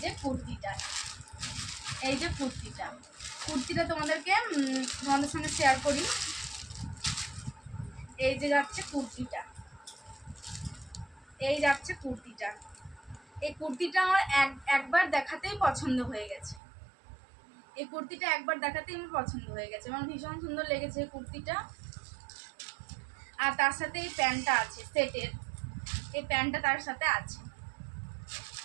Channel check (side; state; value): left; drops out; at 16.6 s